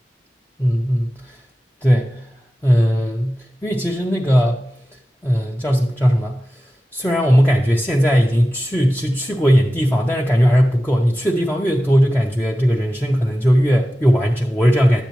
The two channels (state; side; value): normal; both; correlation 0.95